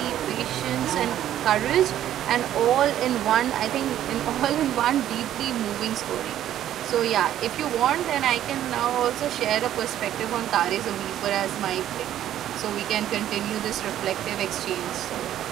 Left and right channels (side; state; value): left; quieter; 11.7 dB